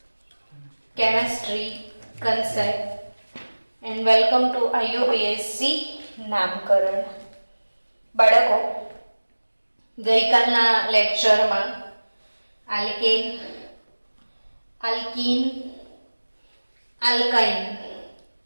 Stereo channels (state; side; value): inverted; both; correlation -1.00